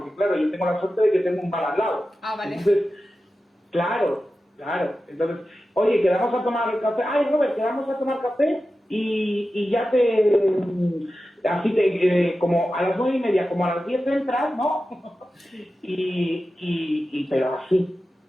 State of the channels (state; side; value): normal; both; correlation 0.93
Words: claro, yo tengo la suerte de que tengo un bar al lado. Vale. Entonces, claro. Entonces, oye, quedamos a tomar café. Ay, Robert, quedamos a tomar café y ya como a las 9:30, como a las 10 entras, ¿no? Pero así.